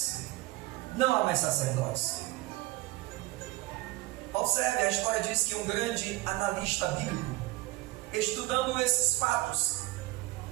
não há mais sacerdotes. Observe, a história diz que um grande analista bíblico, estudando esses fatos,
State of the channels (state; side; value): quieter; left; 20.1 dB